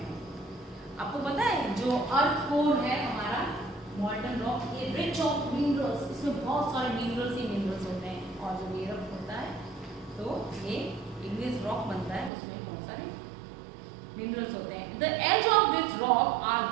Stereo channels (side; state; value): left; drops out; at 12.3 s